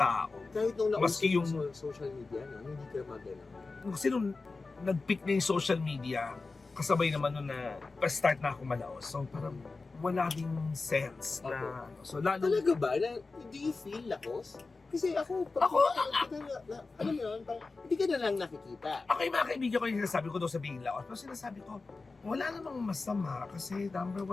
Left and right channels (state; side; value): quieter; right; 3.9 dB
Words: Kahit nung nauso Maski yung- yung social media, no? Hindi ka magana. Kasi nung nag-peak na yung social media, kasabay naman nun na pa-start na ako malaos. So parang wala ding sense na ano. So lalo, Talaga ba? Do you feel lakos? Kasi ako, alam mo yun, parang hindi ka na lang nakikita. ako yung mga kaibigan ko yung sinasabi ko daw sabihin laos. Pero sinasabi ko, wala namang masama kasi number